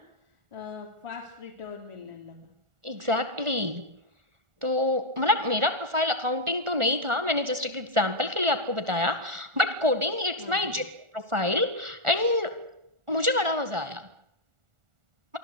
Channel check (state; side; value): late; left; 1.4 ms